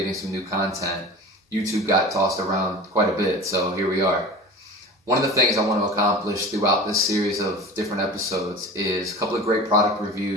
some new content. YouTube got tossed around quite a bit, so here we are. One of the things I want to accomplish throughout this series of different episodes is a couple of great product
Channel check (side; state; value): both; normal; correlation 0.35